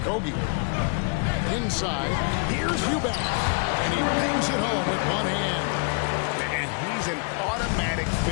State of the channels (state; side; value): quieter; right; 39.3 dB